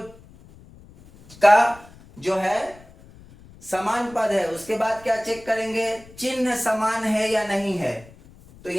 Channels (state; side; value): noise; left; rumble, 23 dB below the sound